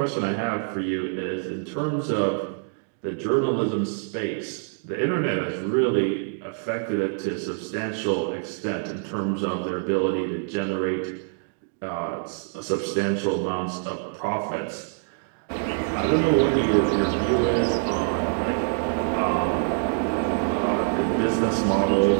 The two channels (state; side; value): silent; left; digital silence